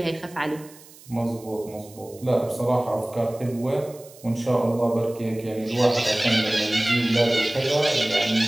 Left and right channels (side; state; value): right; noise; hiss, 22 dB below the sound